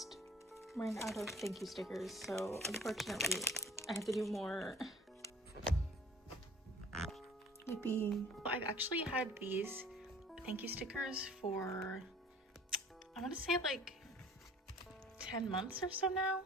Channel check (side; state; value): both; normal; correlation 0.49